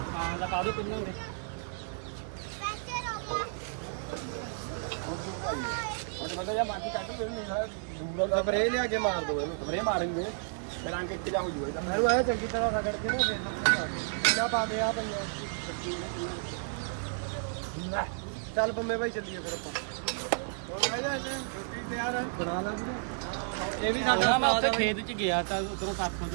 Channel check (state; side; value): silent; left; digital silence